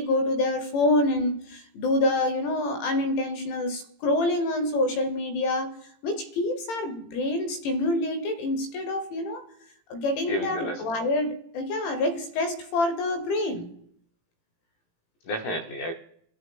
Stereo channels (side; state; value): right; late; 18 ms